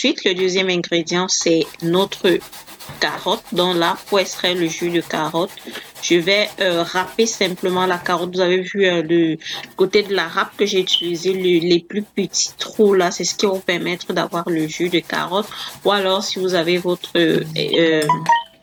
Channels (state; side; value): identical; both; correlation 1.00